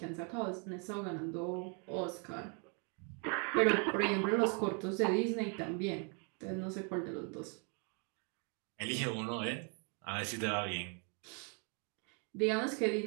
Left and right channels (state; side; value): quieter; left; 36.8 dB